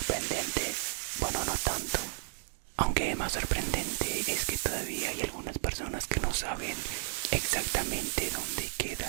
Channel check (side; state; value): left; silent; digital silence